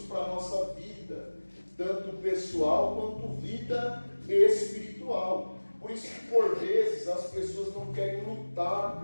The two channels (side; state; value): both; inverted; correlation -1.00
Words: para a nossa vida, tanto pessoal quanto vida espiritual. Por isso que por vezes as pessoas não querem lutar